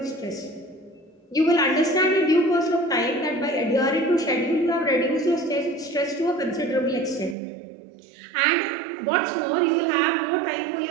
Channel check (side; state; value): left; drops out; at 7.4 s